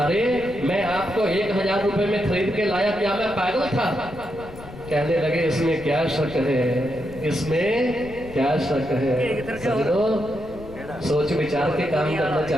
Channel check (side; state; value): left; noise; rumble, 16 dB below the sound